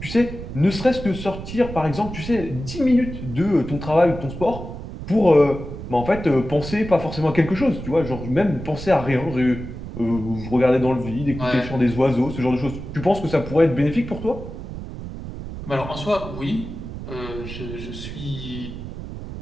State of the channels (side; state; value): right; noise; rumble, 9 dB below the sound